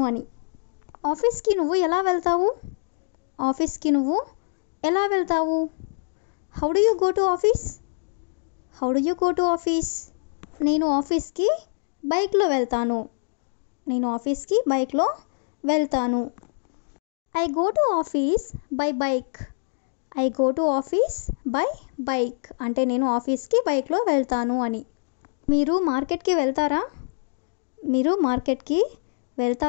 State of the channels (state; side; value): silent; right; digital silence